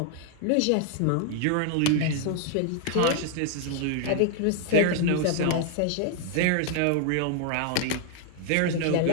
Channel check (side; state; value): both; different; correlation 0.00